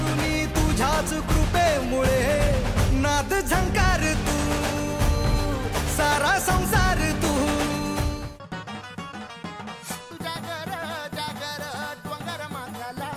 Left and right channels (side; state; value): both; identical; correlation 1.00